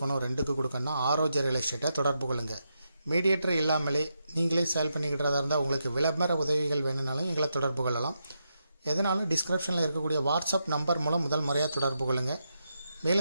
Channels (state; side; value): inverted; both; correlation -0.84